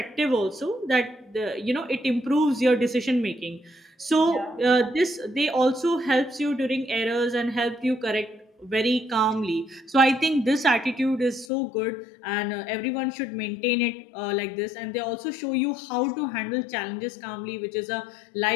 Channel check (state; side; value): drops out; right; at 11.5 s